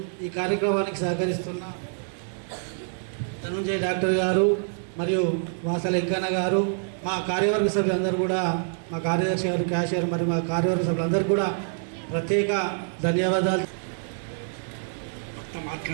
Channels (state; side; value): silent; left; digital silence